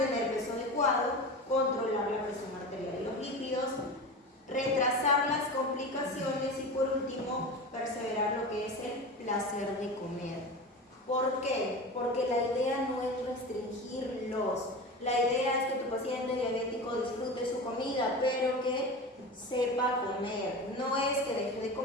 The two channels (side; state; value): both; normal; correlation 0.29